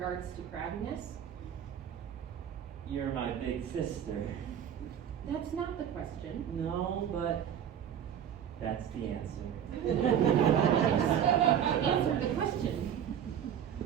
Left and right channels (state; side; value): quieter; left; 9.2 dB